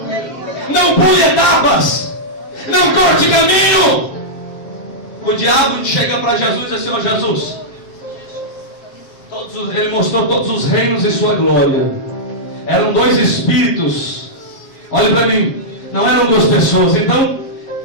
Não pule etapas, não corte caminho. O diabo chega para Jesus e diz assim: ó Jesus, ele mostrou todos os reinos e sua glória. Eram dois espíritos. Olhe para mim, não eram duas pessoas. Então,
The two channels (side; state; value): right; late; 7.4 ms